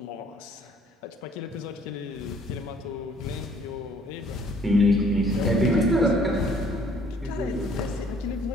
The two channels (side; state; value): both; normal; correlation 0.60